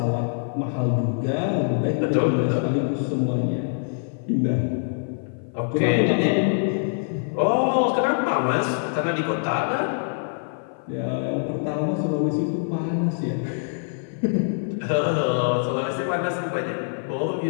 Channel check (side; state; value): right; silent; 55 dB below the other